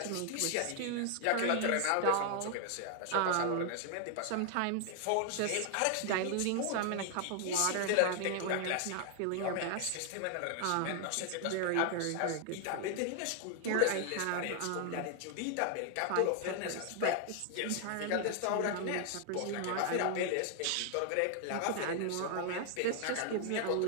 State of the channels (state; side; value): different; both; correlation 0.00